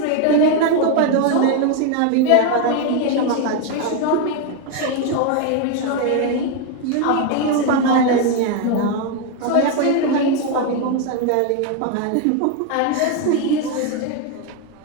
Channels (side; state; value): both; different; correlation 0.01